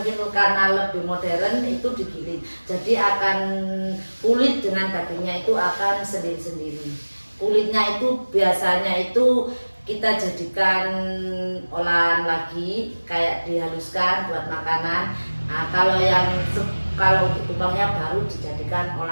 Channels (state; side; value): inverted; both; correlation -1.00